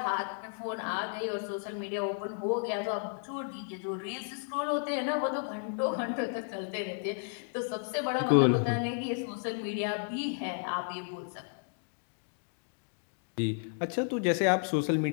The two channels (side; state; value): right; silent; 56 dB below the other